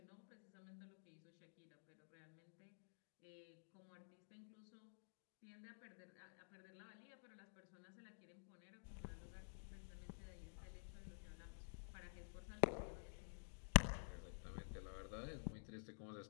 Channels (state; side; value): silent; right; digital silence